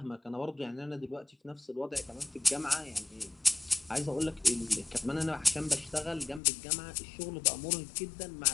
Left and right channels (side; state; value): right; drops out; at 6.4 s